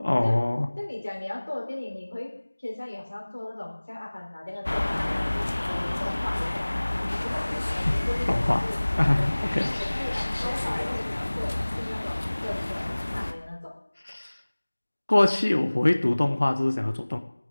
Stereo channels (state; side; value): inverted; both; correlation -1.00